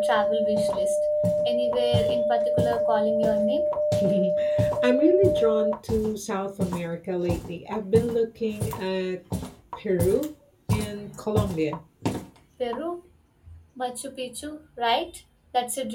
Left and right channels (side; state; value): both; identical; correlation 1.00